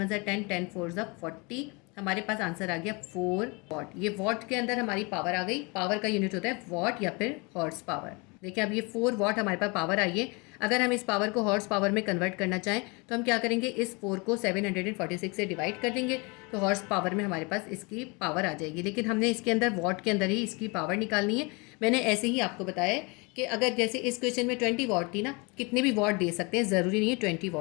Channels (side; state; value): right; quieter; 28.8 dB